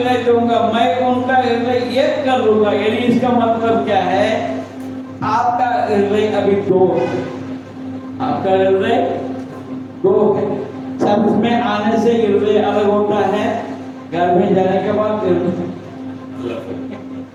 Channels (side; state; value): both; identical; correlation 1.00